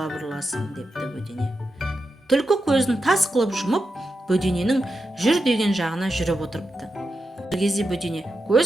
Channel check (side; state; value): both; normal; correlation 0.88